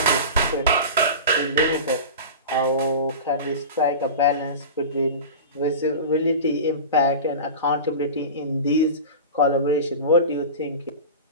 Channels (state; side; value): inverted; both; correlation -0.30